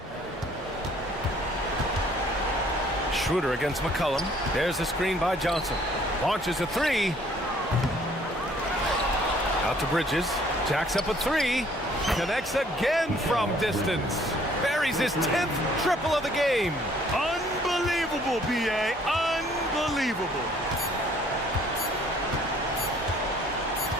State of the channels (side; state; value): both; normal; correlation 0.59